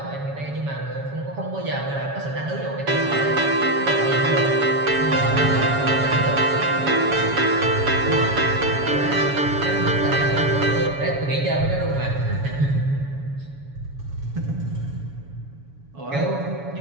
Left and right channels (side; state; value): left; late; 7.1 ms